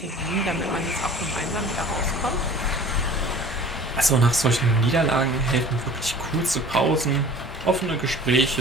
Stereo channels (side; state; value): both; normal; correlation 0.44